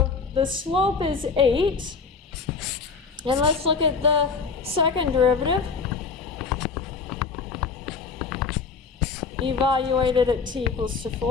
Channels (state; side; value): quieter; right; 5.1 dB